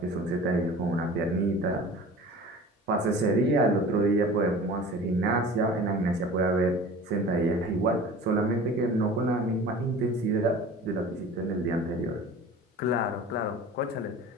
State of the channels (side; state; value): both; normal; correlation 0.40